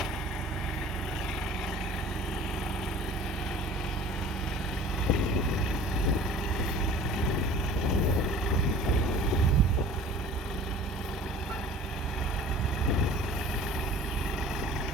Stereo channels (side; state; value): both; normal; correlation 0.44